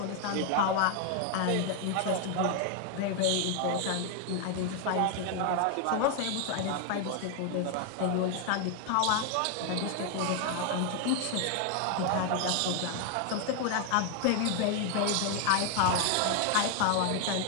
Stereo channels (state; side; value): different; both; correlation 0.01